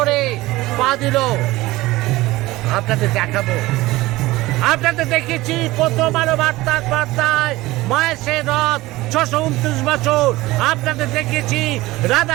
পা দিল। আপনাদের দেখাবো, আপনাদের দেখেছি প্রথম আলো বার্তার বার্তায় মায়ের সেই রথ ৬২৯ বছর। আপনাদের দেখেছি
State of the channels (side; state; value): left; quieter; 18.9 dB